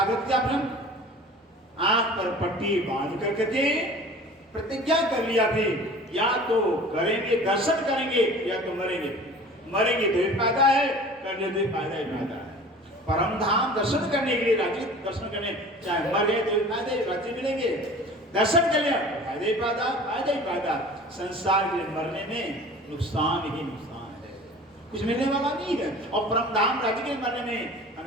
करती आपने, आंख पर पट्टी बांध करके प्रतिज्ञा कर लिया भी, या तो करेंगे दर्शन करेंगे या तो मरेंगे। मरेंगे तो ही फायदा है, करने तो ही फायदा ही फायदा है। परम धाम दर्शन करने के लिए, राज्य दर्शन करने, चाहे मर गए तो भी फायदे, राज्य मिलेंगे। दर्शन कर लिया फायदे ही फायदा, फायदा ही फायदा। संसार के मरने में नुकसान ही नुकसान है, कुछ मिलने वाला नहीं है। और परम धाम राज्य के मरने में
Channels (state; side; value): normal; both; correlation 0.42